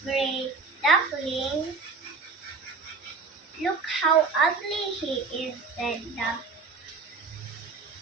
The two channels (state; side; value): quieter; left; 4.7 dB